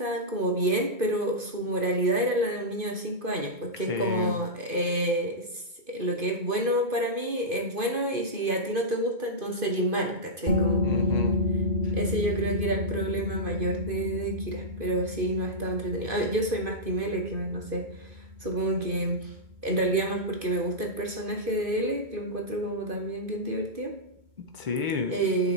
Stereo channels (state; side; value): late; left; 2.5 ms